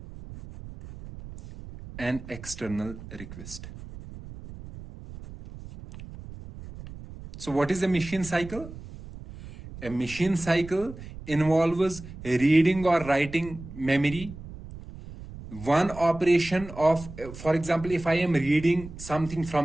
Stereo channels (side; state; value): right; noise; rumble, 14 dB below the sound